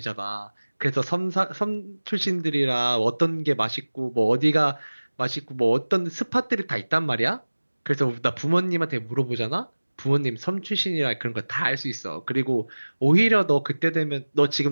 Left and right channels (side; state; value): both; inverted; correlation -1.00